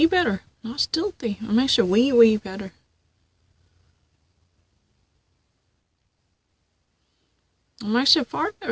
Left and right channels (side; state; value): both; identical; correlation 1.00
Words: better. Not stealthy. I'm actually way, way better. I'm actually far